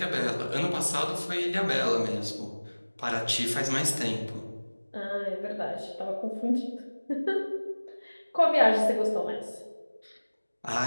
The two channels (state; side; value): inverted; both; correlation -1.00